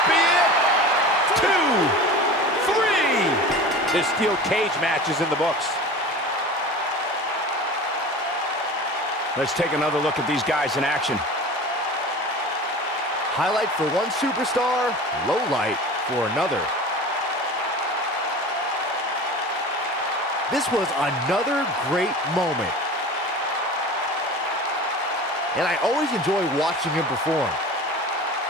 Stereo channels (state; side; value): normal; both; correlation 0.36